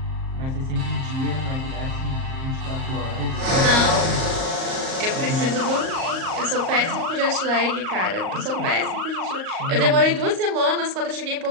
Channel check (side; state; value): left; late; 38 ms